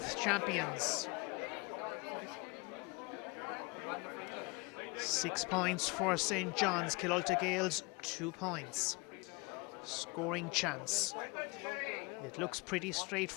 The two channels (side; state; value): right; quieter; 27.9 dB